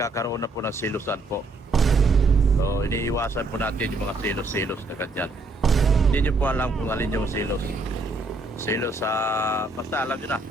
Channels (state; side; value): quieter; left; 3.1 dB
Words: na po ng silusan po. So, iniiwasan po natin yung mga silos-silos na ganyan. Hindi nyo po alam kung alin yung silos. Silos sa... basta alam nyo na.